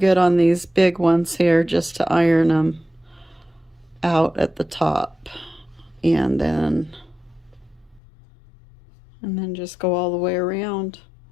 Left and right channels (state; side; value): drops out; right; at 8.0 s